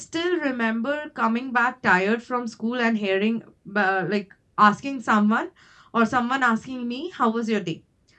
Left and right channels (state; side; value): identical; both; correlation 1.00